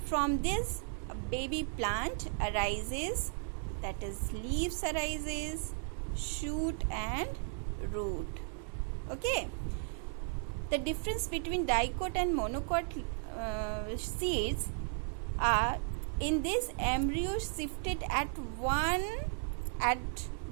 From this a baby plant arises, that is leaves arises, shoot and root. Okay, the difference between dicot and monocot seeds are, in this embryo shifted at one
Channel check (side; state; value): left; silent; 54 dB below the other